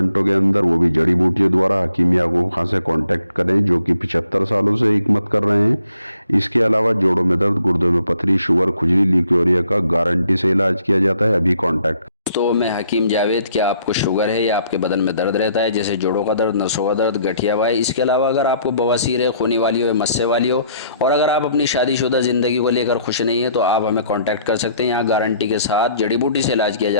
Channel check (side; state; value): both; inverted; correlation -0.66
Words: के अंदर, वो भी जड़ी बूटियों द्वारा। हकीम याकूब खान से कांटेक्ट करें जो कि 75 सालों से हिकमत कर रहे हैं। इसके अलावा जोड़ों में दर्द, गुर्दों में पथरी, शुगर, खुजली, ल्यूकेरिया का गारंटी से इलाज किया जाता है। अभी कांटेक्ट। तो मैं हकीम जावेद, क्या आपको शुगर है या आपके बदन में दर्द रहता है, जैसे जोड़ों का दर्द, नसों का दर्द, गठिया वाई, इसके अलावा अगर आपको बवासीर है, खूनी वाली हो या मस्से वाली हो, और अगर आप अपनी शादीशुदा ज़िंदगी को लेकर खुश नहीं है तो आप हमें कांटेक्ट कर सकते हैं। यहाँ गारंटी के साथ जड़ी बूटी से इलाज किया